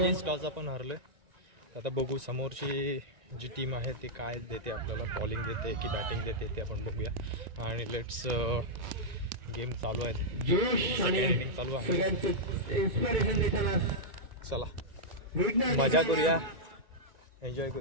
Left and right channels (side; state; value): left; late; 1.9 ms